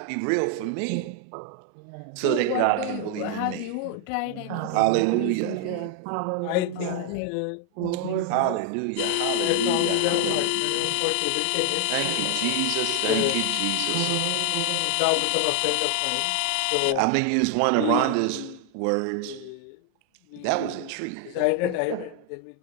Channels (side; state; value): both; different; correlation 0.00